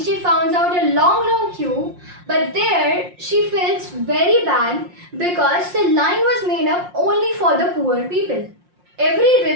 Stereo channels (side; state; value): left; late; 5.6 ms